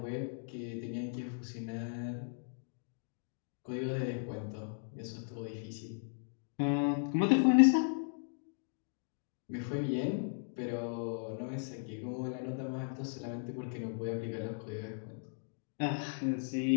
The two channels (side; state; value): right; silent; digital silence